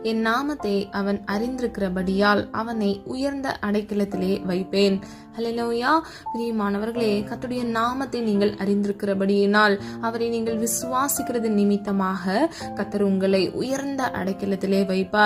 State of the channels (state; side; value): identical; both; correlation 1.00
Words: என் நாமத்தை அவன் அறிந்திருக்கிறபடியால் அவனை உயர்ந்த அடைக்கலத்திலே வைப்பேன். ஹல்லேலூயா. பிரியமானவர்களே, கர்த்தருடைய நாமத்தை நீங்கள் அறிந்திருக்கிறபடியினால், அவரை நீங்கள் விசுவாசிக்கிறது நிமித்தமாக கர்த்தர் உங்களை உயர்ந்த அடைக்கலத்திலே